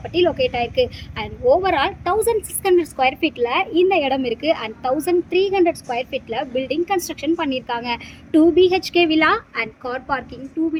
லொக்கேட் ஆயிருக்கு. அண்ட் ஓவரால் 1600 ஸ்கொயர் ஃபீட்ல இந்த இடம் இருக்கு. அண்ட் 1300 ஸ்கொயர் ஃபீட்ல பில்டிங் கன்ஸ்ட்ரக்ஷன் பண்ணியிருக்காங்க. 2 BHK villa and car parking, 2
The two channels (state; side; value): identical; both; correlation 1.00